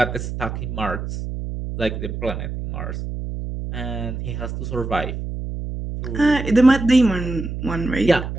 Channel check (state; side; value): noise; right; hum, 6 dB below the sound